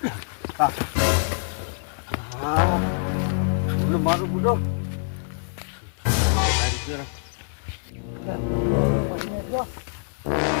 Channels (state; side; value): silent; right; 62 dB below the other